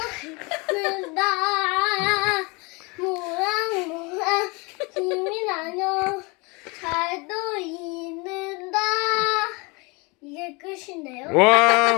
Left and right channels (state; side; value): quieter; right; 27.9 dB